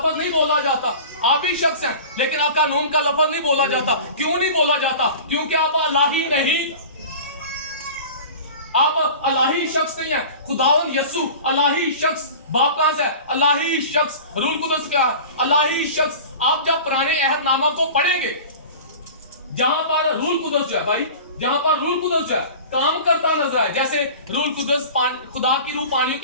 نہیں بولا جاتا. آپ بھی شخص ہیں لیکن اکانوم کا لفظ نہیں بولا جاتا. کیوں نہیں بولا جاتا؟ کیونکہ آپ الہی نہیں, آپ الہی شخص نہیں ہیں. خداوند یسوع الہی شخص. باپ کہاں سے ہے؟ الہی شخص. روح القدس کیا ہے؟ الہی شخص. آپ جب پرانے عہد نامہ کو پڑھیں گے جہاں پر روح القدس جو ہے بھائی, جہاں پر روح القدس جو ہے کام کرتا نظر آئے, جیسے روح القدس خدا کی روح پانیوں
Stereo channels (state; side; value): inverted; both; correlation -0.37